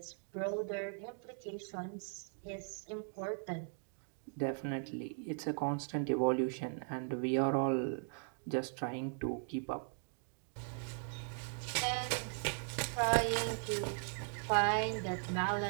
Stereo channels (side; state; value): left; silent; 52 dB below the other